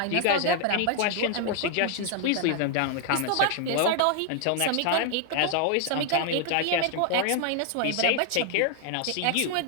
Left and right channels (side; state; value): both; different; correlation 0.00